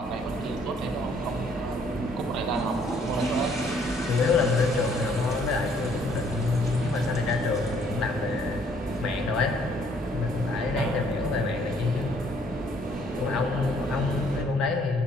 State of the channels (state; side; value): normal; both; correlation 0.64